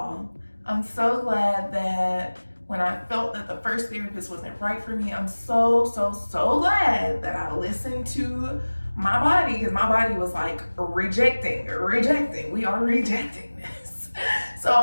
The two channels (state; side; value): inverted; both; correlation -1.00